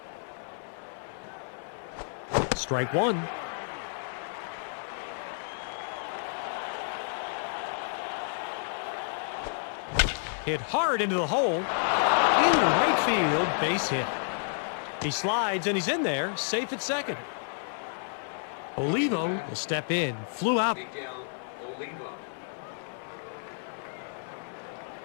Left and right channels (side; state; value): right; silent; 58 dB below the other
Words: Strike one. Hit hard into the hole. Into right field, base hit. He slides and he's in there, safe at second. Olivo will step in, flew out. Miguel Olivo.